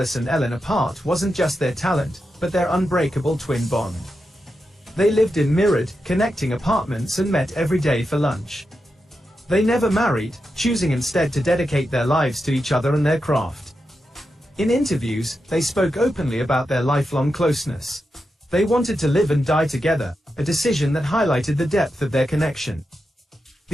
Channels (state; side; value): normal; both; correlation 0.88